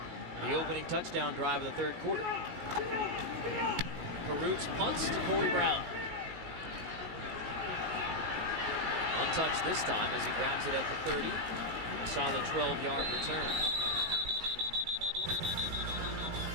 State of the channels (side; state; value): left; late; 19 ms